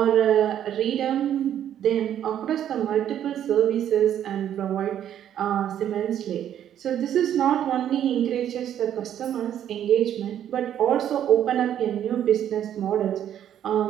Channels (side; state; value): left; quieter; 10.4 dB